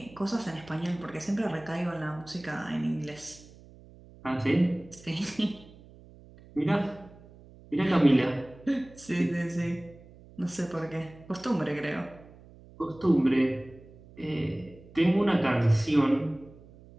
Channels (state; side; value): noise; right; hum, 22 dB below the sound